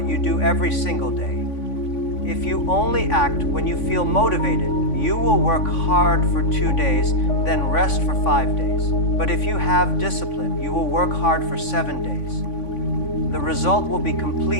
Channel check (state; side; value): late; right; 3.5 ms